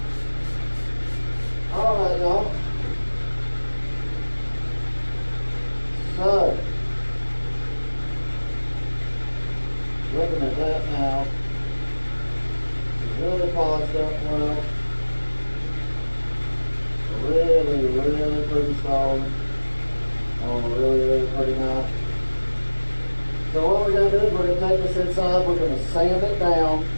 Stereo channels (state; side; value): inverted; both; correlation -1.00